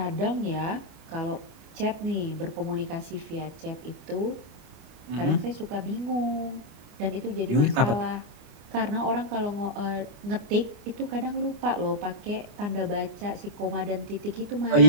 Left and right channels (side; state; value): left; late; 29 ms